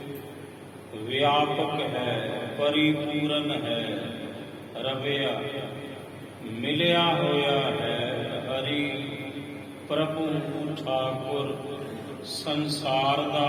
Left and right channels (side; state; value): both; identical; correlation 1.00